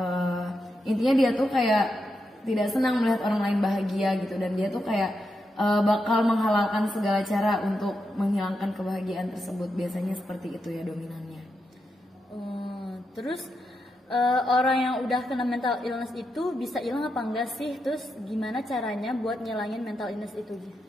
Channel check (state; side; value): normal; both; correlation 0.85